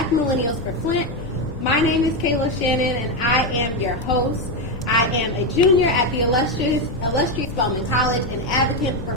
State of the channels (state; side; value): normal; both; correlation 0.08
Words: Millennials for Flint. My name is Kayla Shannon, and I am your host. I am a junior at the illustrious Spelman College, an advocate for